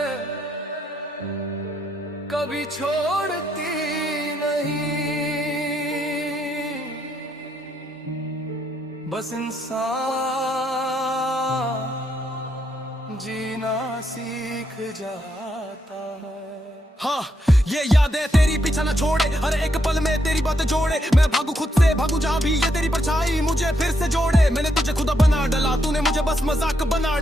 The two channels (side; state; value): both; normal; correlation 0.77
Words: कभी छोड़ती नहीं, बस इंसान जीना सीख जाता है। हाँ, ये यादें तेरी पीछा न छोड़े, हर एक पल में तेरी बातें जोड़े। मैं भागू खुद से, भागू जहाँ भी, ये तेरी परछाई मुझे फिर से जोड़े। मैंने तुझे खुदा बना डाला, तूने मुझे बस मजाक बना